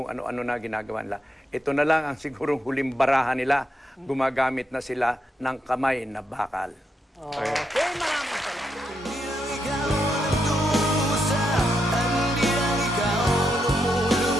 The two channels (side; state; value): both; normal; correlation 0.82